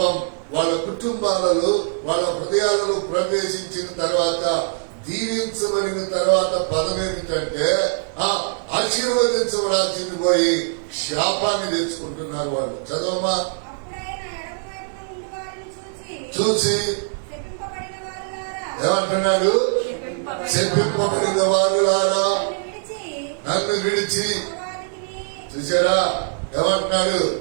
వాళ్ళ కుటుంబాలలో, వాళ్ళ హృదయాలలో ప్రవేశించిన తర్వాత, దీవించబడిన తర్వాత పదం ఏమిటంటే ఆశీర్వదించబడాల్సింది పోయి శాపాన్ని తెచ్చుకుంటున్నారు వాళ్ళు. చదవమా. చూసి ఏమంటున్నాడు? చెప్పింపబడిన వారులారా నన్ను విడిచి. చూసారా ఏమంటున్నాడు?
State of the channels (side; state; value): left; silent; digital silence